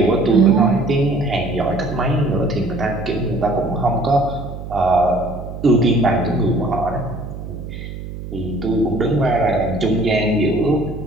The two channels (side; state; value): right; noise; hum, 10 dB below the sound